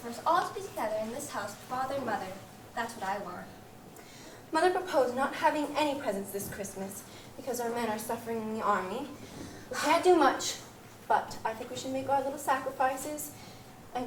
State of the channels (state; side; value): identical; both; correlation 1.00